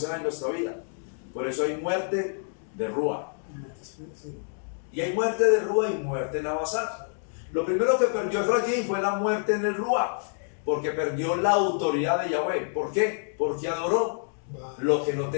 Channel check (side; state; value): right; silent; digital silence